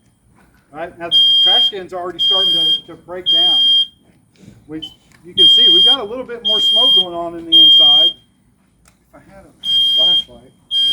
Right, now the trash can's already starting to break down. You can see we've got a little bit more smoke going on in the inside. If I had a flashlight.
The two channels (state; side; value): identical; both; correlation 1.00